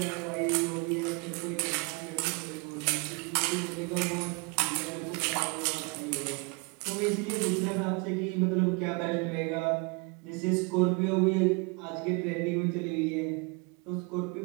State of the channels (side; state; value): left; quieter; 31.2 dB